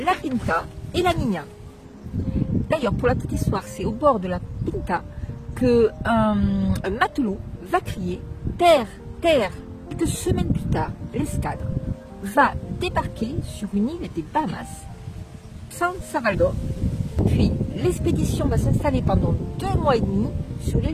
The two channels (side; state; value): both; identical; correlation 1.00